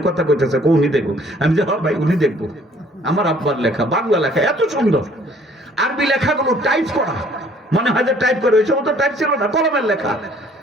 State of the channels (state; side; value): normal; both; correlation 0.58